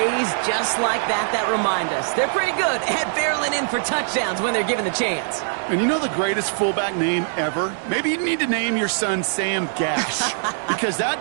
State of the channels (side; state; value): left; silent; digital silence